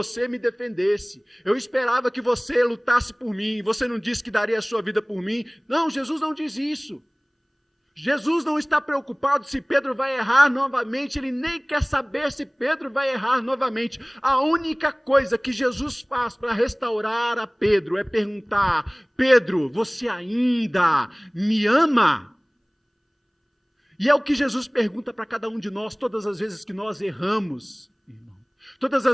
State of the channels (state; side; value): identical; both; correlation 1.00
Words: me defendesse. Eu esperava que você lutasse por mim. Você não disse que daria a sua vida por mim. Não, Jesus não diz isso. Jesus não está preocupado se Pedro vai errar novamente. Ele nem quer saber se Pedro vai errar novamente. A única coisa que Jesus faz para restaurar a Pedro é perguntar: Pedro, você ainda me ama? E é o que Jesus pergunta para cada um de nós todas as vezes que nós erramos, irmão. Todas